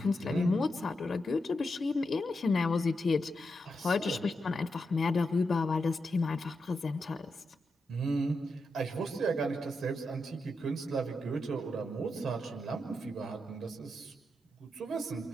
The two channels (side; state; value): both; normal; correlation 0.86